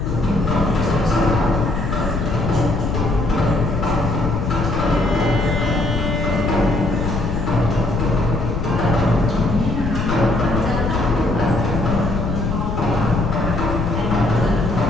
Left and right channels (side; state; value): left; noise; rumble, 1 dB below the sound